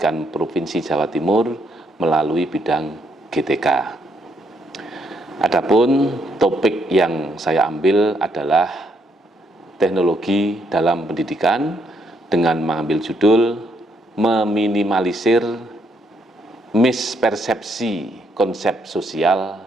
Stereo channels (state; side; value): normal; both; correlation 0.74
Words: Provinsi Jawa Timur melalui bidang GTK. Adapun topik yang saya ambil adalah teknologi dalam pendidikan dengan mengambil judul meminimalisir mispersepsi konsep sosial